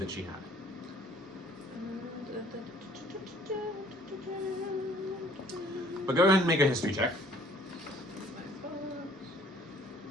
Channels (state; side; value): normal; both; correlation 0.57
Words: she had. But go ahead and make a history check.